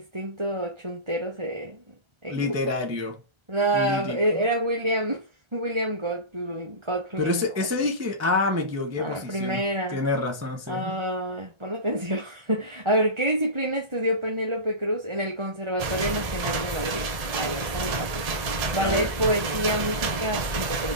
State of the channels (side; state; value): left; late; 1.3 ms